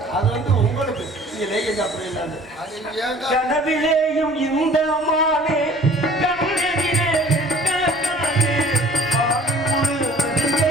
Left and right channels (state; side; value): normal; both; correlation 0.50